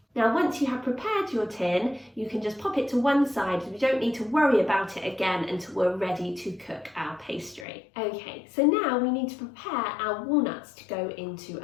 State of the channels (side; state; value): right; drops out; at 7.7 s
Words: Now, once you have prepared your tin, you can just pop it to one side. We don't need to worry about it again until we're ready to cook our pastry. Okay, so now we need to prepare our walnuts to go into